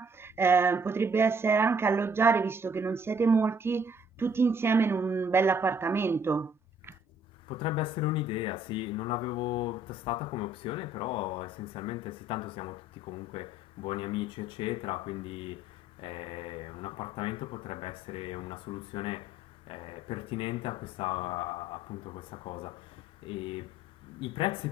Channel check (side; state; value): both; normal; correlation 0.62